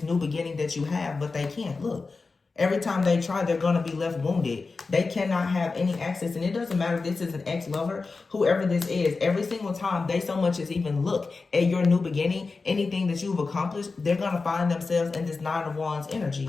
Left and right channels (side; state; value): right; quieter; 4.1 dB